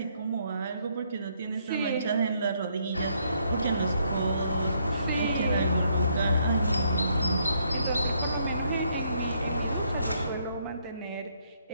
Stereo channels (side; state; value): both; inverted; correlation -0.72